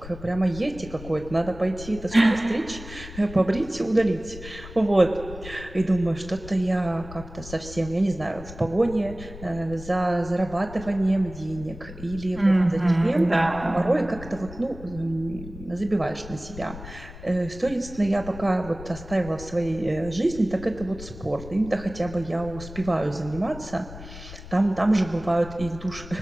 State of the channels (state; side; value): noise; left; rumble, 14 dB below the sound